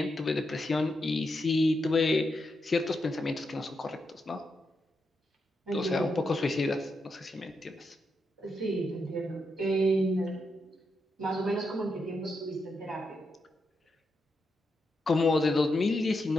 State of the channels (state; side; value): normal; both; correlation 0.84